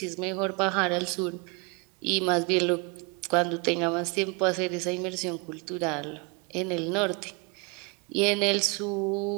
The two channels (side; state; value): left; quieter; 30.8 dB